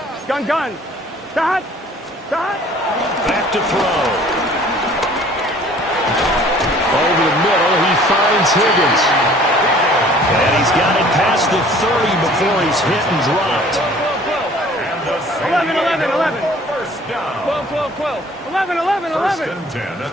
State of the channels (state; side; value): normal; both; correlation 0.52